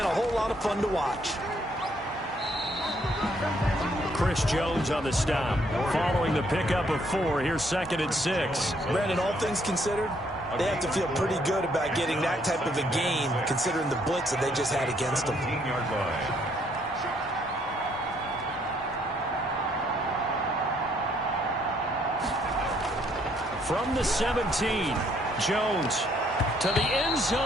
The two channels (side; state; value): both; normal; correlation 0.68